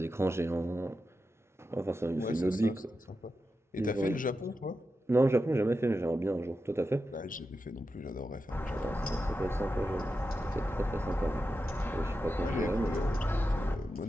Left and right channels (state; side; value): normal; both; correlation 0.90